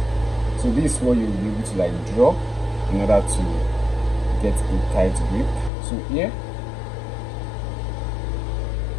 So this is what you'll be able to like draw in order to get a tight grip. So here,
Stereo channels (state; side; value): drops out; right; at 5.7 s